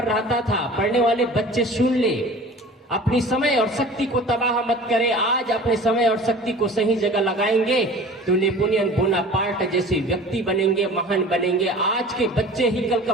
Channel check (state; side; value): normal; both; correlation 0.42